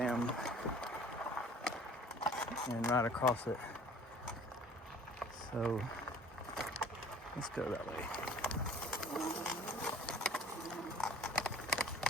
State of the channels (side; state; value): both; normal; correlation 0.50